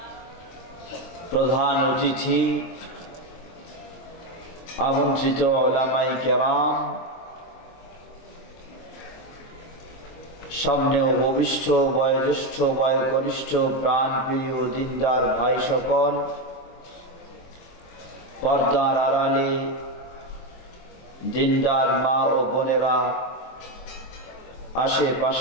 প্রধান অতিথি, আমন্ত্রিত উলামায়ে কেরাম, সামনে উপবিষ্ট বয়োজ্যেষ্ঠ বয়োকনিষ্ঠ প্রাণপ্রিয় দিনদার ভাই সকল, পর্দার আড়ালে দিনদার মা ও বোনেরা,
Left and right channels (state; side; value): late; right; 23 ms